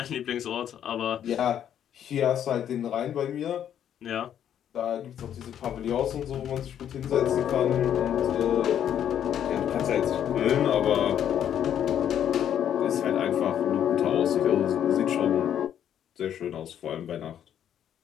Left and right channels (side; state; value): right; quieter; 9.8 dB